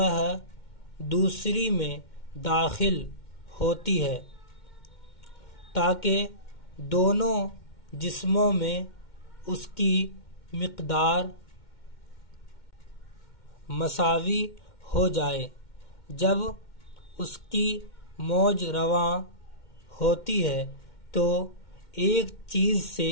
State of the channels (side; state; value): right; late; 2.1 ms